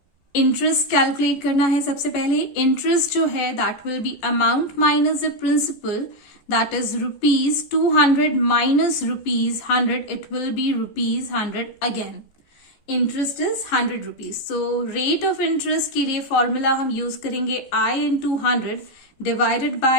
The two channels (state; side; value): late; right; 14 ms